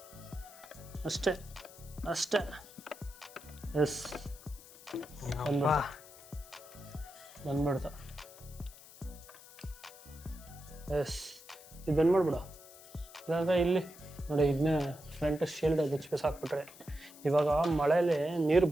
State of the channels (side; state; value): left; noise; hiss, 19 dB below the sound